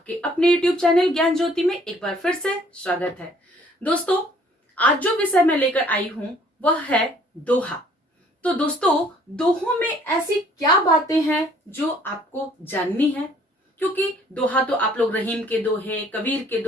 अपने YouTube चैनल ज्ञान ज्योति में एक बार फिर से स्वागत है। दोस्तों, आज जो विषय मैं लेकर आई हूँ वह है दोहा। तो दोस्तों, दोहों में ऐसी क्या बातें हैं जो आपको जाननी है? क्योंकि दोहा तो आप लोग रहीम के दोहे, कबीर के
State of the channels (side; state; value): both; normal; correlation 0.59